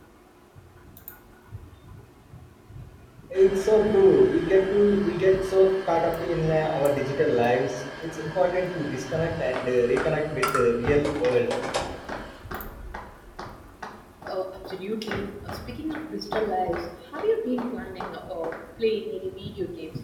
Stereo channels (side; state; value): both; identical; correlation 1.00